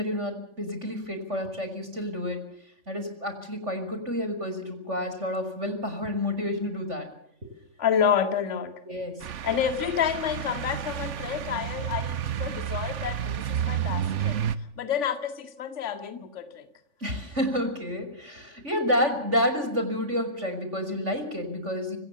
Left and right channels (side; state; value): left; late; 3.5 ms